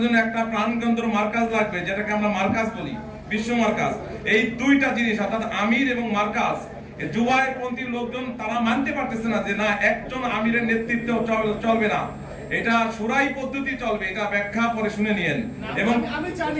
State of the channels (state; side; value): identical; both; correlation 1.00